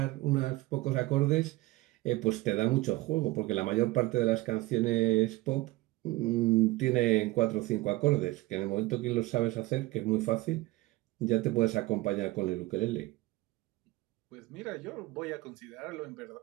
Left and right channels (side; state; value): left; quieter; 19.3 dB